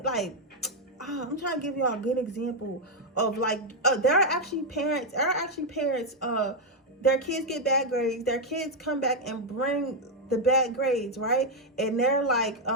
Like, I'm trying to give y'all a good example of like, there are actually parents, their kids get bad grades, their kids come back and bring the bad grades, right? And they're like,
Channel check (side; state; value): both; normal; correlation 0.01